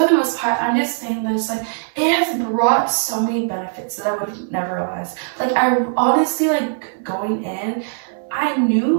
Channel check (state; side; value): silent; left; 59 dB below the other